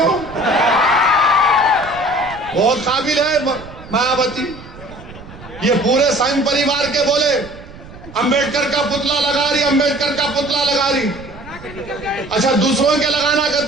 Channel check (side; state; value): right; noise; rumble, 17 dB below the sound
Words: بہت قابل ہے مایاوتی۔ یہ پورے سنگھ پریوار کے بولے امبیڈکر کا پتلا لگا رہی، امبیڈکر کا پتلا لگا رہی۔ اچھا دوسروں کے لگانا